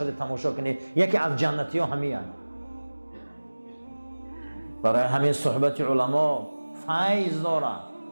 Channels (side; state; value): both; inverted; correlation -1.00